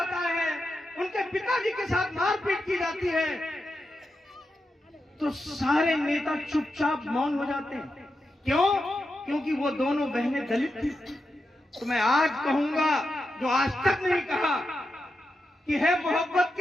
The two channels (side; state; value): both; normal; correlation 0.88